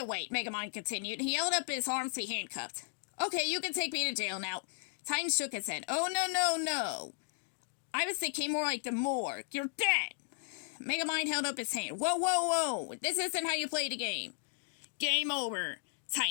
wait, Megamind continued. He held up his arms to be handcuffed. Okay, you can take me to jail now. Titan shook his head. Oh, no. I was thinking more like the morgue. You're dead. Megamind held up his hand. Whoa. This isn't how you play the game. Game over,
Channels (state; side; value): silent; right; digital silence